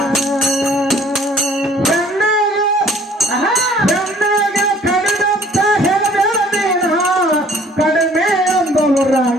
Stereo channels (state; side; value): normal; both; correlation 0.55